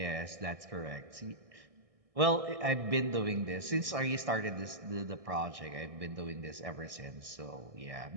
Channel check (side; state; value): left; late; 1.6 ms